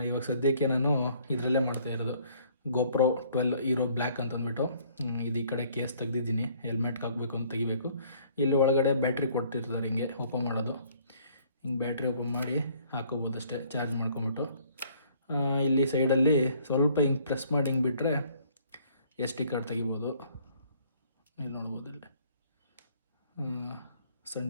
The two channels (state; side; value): inverted; both; correlation -0.60